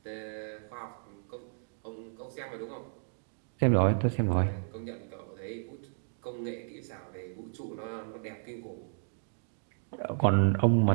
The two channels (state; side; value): silent; left; digital silence